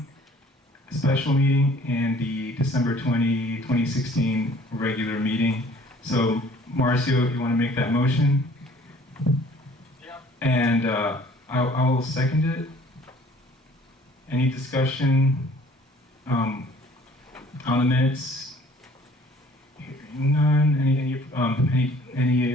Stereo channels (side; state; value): both; normal; correlation 0.54